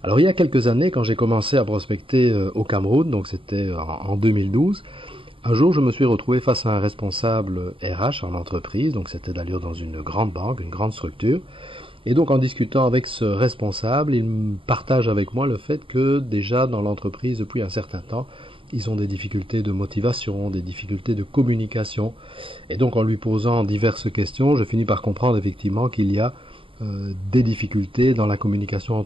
Alors il y a quelques années, quand j'ai commencé à prospecter au Cameroun, donc c'était en 2012, un jour je me suis retrouvé face à un responsable RH en entreprise, donc c'était d'ailleurs dans une grande banque, une grande structure, et donc en discutant avec ce responsable, il me partage avec moi le fait que déjà dans l'entreprise depuis un certain temps, ils ont des difficultés de motivation, des difficultés de communication, et donc en lui posant diverses questions, je finis par comprendre effectivement qu'il y a des difficultés dans la communication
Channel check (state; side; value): late; left; 0.25 ms